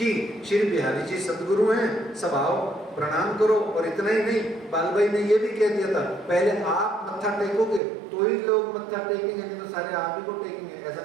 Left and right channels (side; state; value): left; drops out; at 7.8 s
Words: श्री बिहारी जी सदगुरु हैं, सब आओ प्रणाम करो। और इतना ही नहीं, बालभाई ने ये भी कह दिया था पहले आप मत्था टेकोगे तो ही लोग मत्था टेकेंगे, नहीं तो सारे आप ही को टेकेंगे। ऐसा